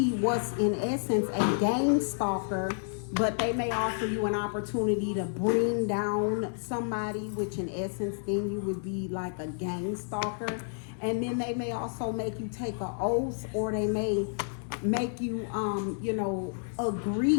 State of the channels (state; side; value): silent; right; 58 dB below the other